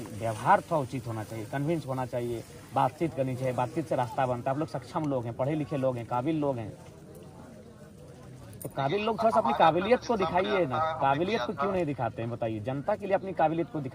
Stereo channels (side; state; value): both; identical; correlation 1.00